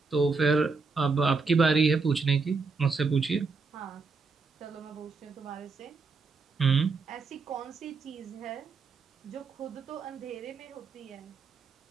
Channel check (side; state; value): left; quieter; 4.5 dB